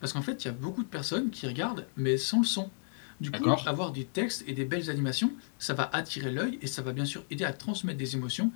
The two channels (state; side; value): silent; right; digital silence